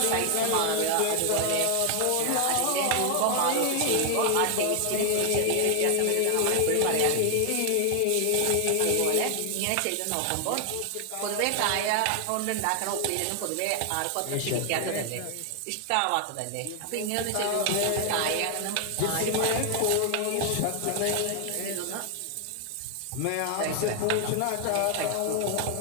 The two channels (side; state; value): both; different; correlation 0.00